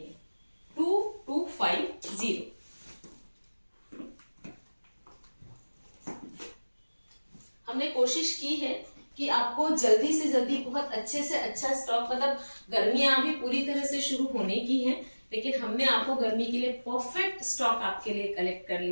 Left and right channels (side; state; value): both; inverted; correlation -1.00